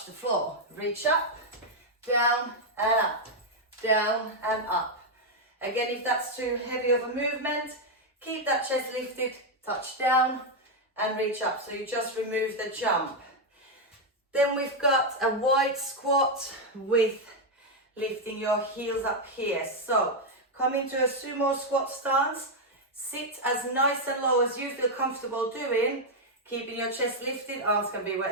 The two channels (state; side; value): normal; both; correlation 0.01